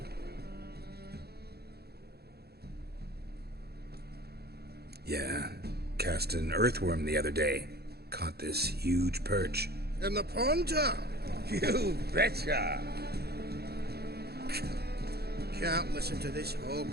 Yeah, cast an earthworm the other day. Caught this huge perch. In the Pontar? You betcha. Can't listen to this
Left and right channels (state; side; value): late; left; 0.46 ms